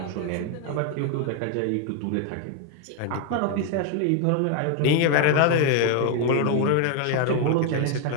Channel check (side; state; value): both; different; correlation 0.01